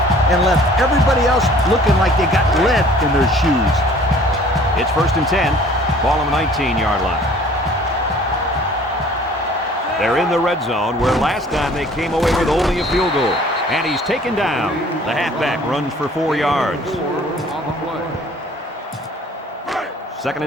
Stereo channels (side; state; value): both; normal; correlation 0.52